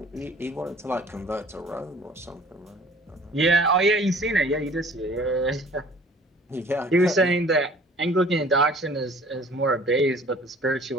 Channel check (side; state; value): both; normal; correlation 0.51